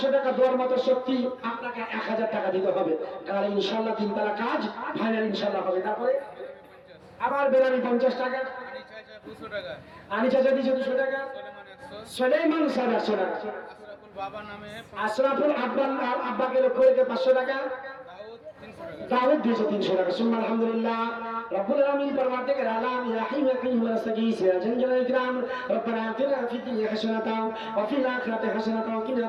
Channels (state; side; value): identical; both; correlation 1.00